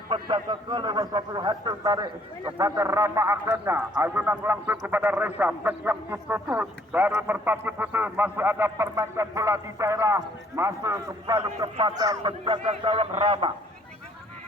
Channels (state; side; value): normal; both; correlation 0.62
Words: penjaga ke lewat satu hati tarik kepada Rama akhirnya ayunan langsung kepada Reza yang ditutup dari Merpati Putih masih ada permainan bola di daerah masih kembali kepada penjaga gawang Rama.